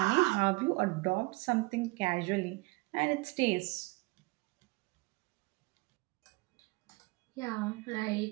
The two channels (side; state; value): left; quieter; 24.4 dB